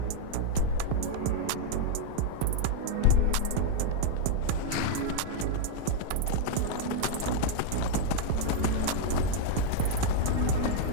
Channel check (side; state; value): both; different; correlation -0.01